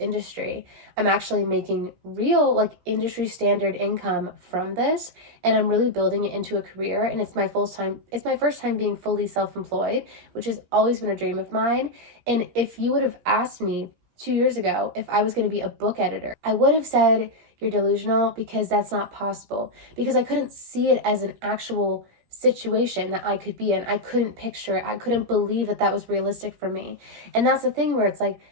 I'm actually making real like industry standard income from this. And I'm really building it into a career. And it's my first time being fully self-employed, which has always been a dream of mine. And if you would have asked me 2 years ago if I was going to be a book editor, I would have said, you're delusional, because that's not possible, because I couldn't see it as an actual situation that I could be in. I couldn't picture it. I couldn't believe that that was realistic for me. And that's the thing where it's like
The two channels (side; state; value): left; late; 17 ms